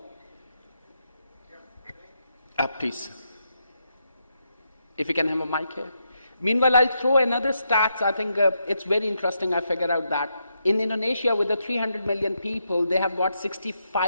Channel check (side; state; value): both; inverted; correlation -0.81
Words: Please. If we can have a mic here. Meanwhile, I'll throw another stats. I think it's very interesting. I figured out that in Indonesia, with the 300 million people, they have got